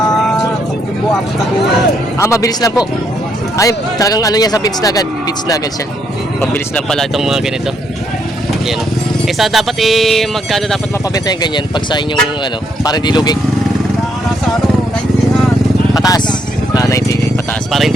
buwan na buwan. Mabilis lang po. Ay, talagang ano niya sa beach na agad. Beach na agad siya. Mabilis lang pala itong mga ganito. Yan. Sa dapat magkano dapat mapabenta yung ganyan pag sa inyong ano, para hindi lugi? Nasa 90 na. Pataas. 90 pataas. Para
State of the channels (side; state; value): both; normal; correlation 0.74